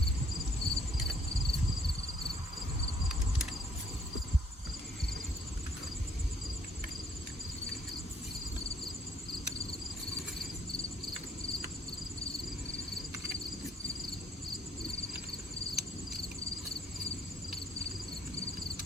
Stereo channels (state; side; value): normal; both; correlation 0.64